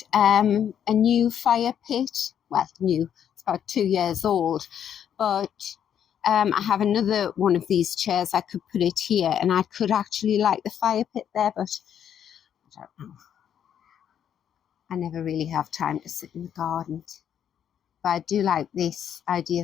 a new fire pit. Well, new, it's about 2 years old. But I have another one of these chairs. I could put it here, and I could actually light the fire pit there, but I don't know. I never really have time to sit in the garden. But I do like this idea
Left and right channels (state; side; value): quieter; right; 9.1 dB